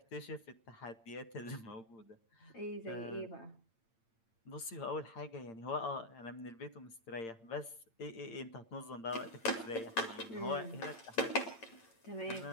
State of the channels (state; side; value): late; right; 8.8 ms